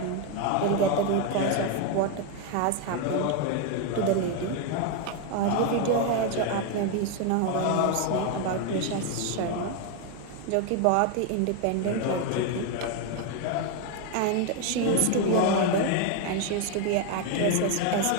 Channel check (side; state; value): both; different; correlation 0.01